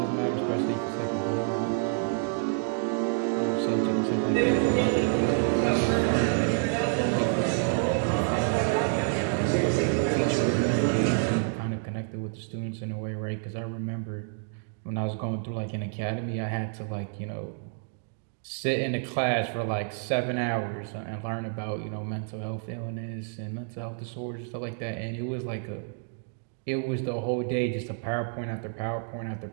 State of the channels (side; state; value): left; silent; 59 dB below the other